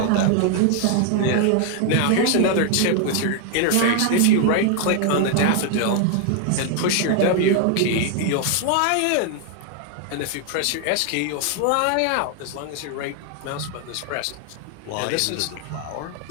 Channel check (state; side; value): different; both; correlation 0.00